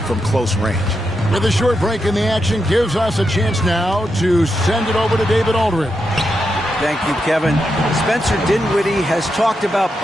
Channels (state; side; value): normal; both; correlation 0.85